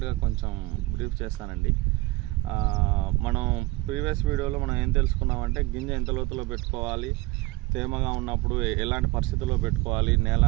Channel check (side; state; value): left; quieter; 21.5 dB